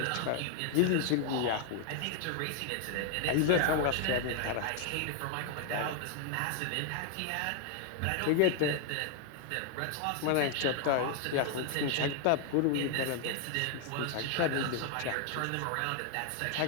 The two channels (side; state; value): both; different; correlation 0.00